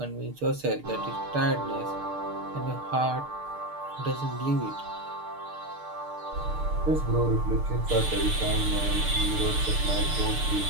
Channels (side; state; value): left; late; 6.7 ms